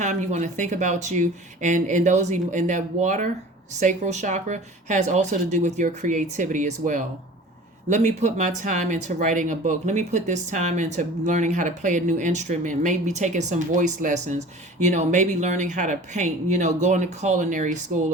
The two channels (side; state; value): both; normal; correlation 0.42